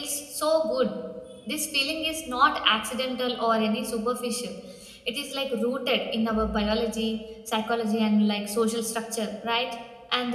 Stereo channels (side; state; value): both; identical; correlation 1.00